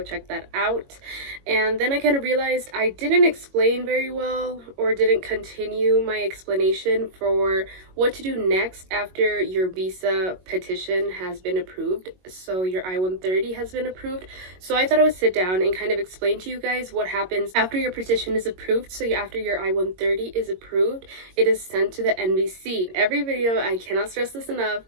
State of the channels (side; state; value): left; late; 22 ms